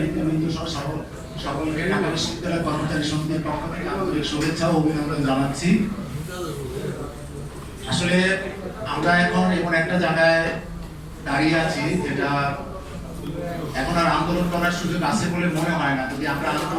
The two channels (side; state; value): both; identical; correlation 1.00